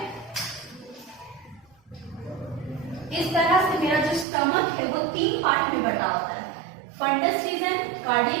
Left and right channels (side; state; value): left; drops out; at 4.2 s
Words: इस तरह से मेरा जो स्टमक है वो 3 पार्ट में बटा होता है, फंडस रीजन,